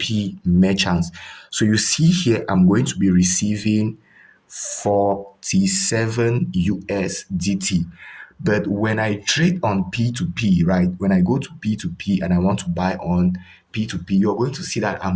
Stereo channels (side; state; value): both; identical; correlation 1.00